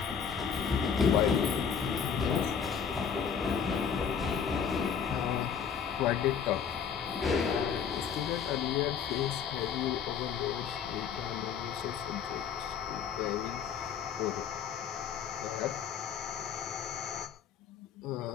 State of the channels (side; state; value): right; quieter; 7.2 dB